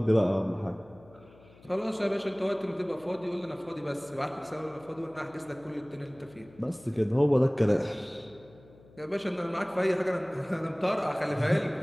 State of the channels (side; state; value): left; noise; hum, 25 dB below the sound